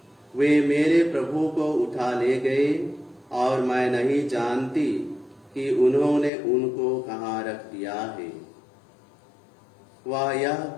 वे मेरे प्रभु को उठा ले गए और मैं नहीं जानती कि उन्होंने उनको कहाँ रख दिया है। वह यह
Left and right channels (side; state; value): right; drops out; at 6.3 s